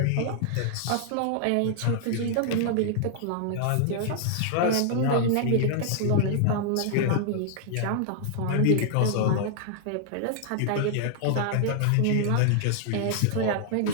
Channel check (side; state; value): both; different; correlation -0.01